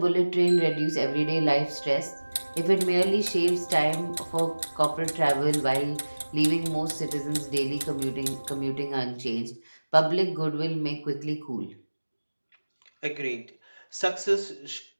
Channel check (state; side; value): inverted; both; correlation -1.00